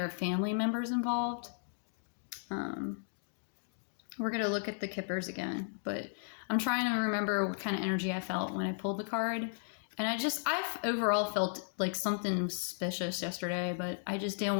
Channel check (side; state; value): right; silent; digital silence